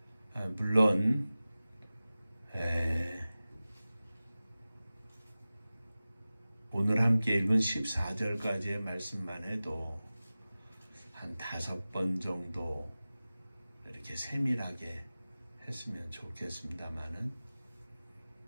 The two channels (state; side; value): inverted; both; correlation -0.96